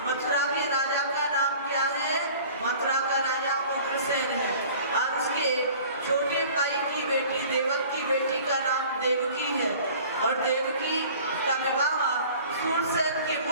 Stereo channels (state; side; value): inverted; both; correlation -0.47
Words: मथुरा के राजा का नाम क्या है? मथुरा का राजा उग्रसेन है, और उसके छोटे भाई की बेटी, देवक की बेटी का नाम देवकी है। और देवकी का विवाह सूरसेन के